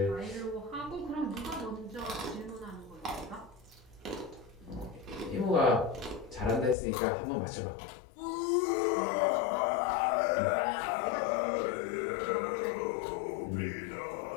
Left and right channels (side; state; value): right; drops out; at 6.8 s